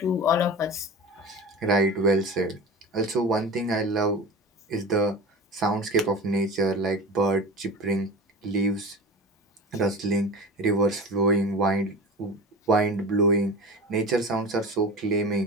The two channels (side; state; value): both; normal; correlation 0.31